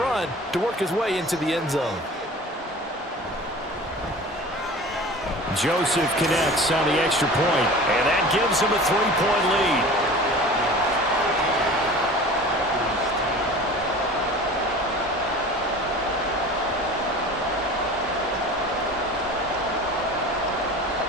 to work his way into the end zone. Joseph connects on the extra point. And that gives him a 3-point lead.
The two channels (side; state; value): both; normal; correlation 0.39